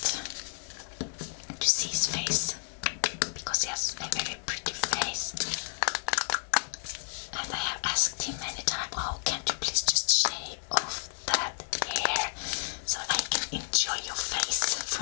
to see his face, because he has a very pretty face, and I have asked him many times, oh, can't you please just shave off that hair so I can enjoy your face for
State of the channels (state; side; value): silent; right; digital silence